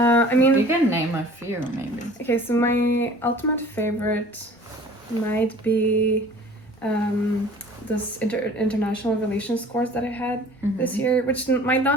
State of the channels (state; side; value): normal; both; correlation 0.47